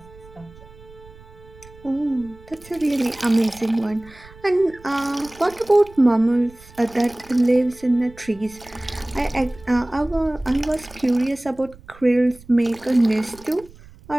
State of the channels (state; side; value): noise; right; rumble, 22 dB below the sound